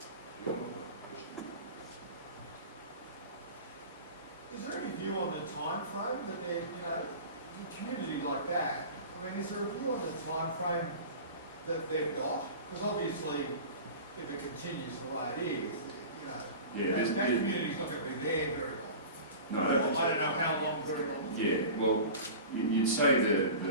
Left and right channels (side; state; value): both; inverted; correlation -0.36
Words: Is there any view on the time frame that they're, a community like that, I mean, is there a view on the time frame that they've got? Because obviously, if it continues the way it is, that community's not going to be there very long. No, I don't know how long, very long. Yeah, well, you'd say